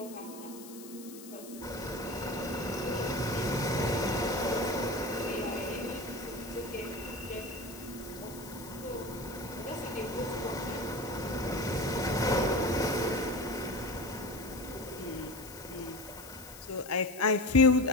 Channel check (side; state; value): left; noise; hiss, 16 dB below the sound